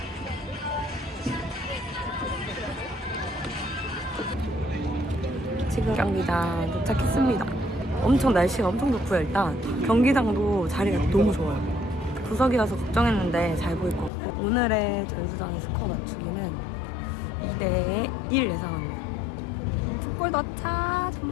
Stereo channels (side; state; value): right; drops out; at 14.1 s